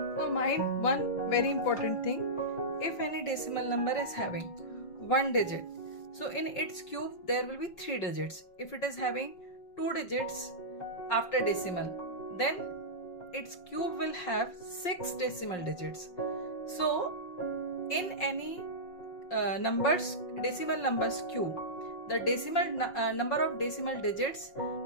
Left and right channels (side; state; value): right; late; 5.6 ms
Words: So mind one very important thing, if any decimal number is having one digit, so in its cube there will be 3 digits. If it is having 2 digits after decimal, then its cube will have 6 decimal digits. So in any decimal numbers cube, the decimal number of decimal digits